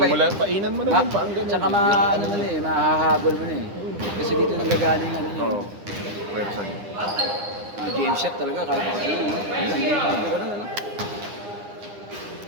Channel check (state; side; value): late; left; 9.9 ms